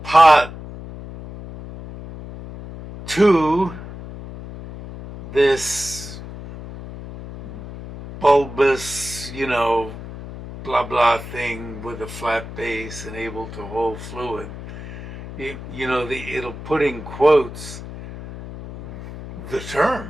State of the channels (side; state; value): left; noise; hum, 12 dB below the sound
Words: pot to this bulbous, blah blah thing with a flat base and able to hold fluid. It'll put in quotes the